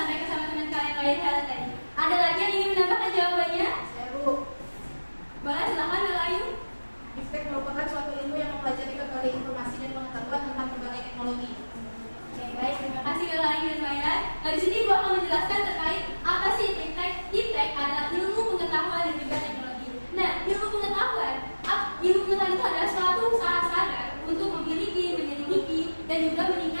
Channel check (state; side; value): inverted; both; correlation -1.00